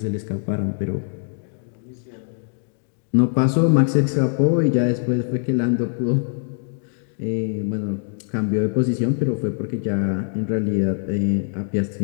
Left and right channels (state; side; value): silent; right; digital silence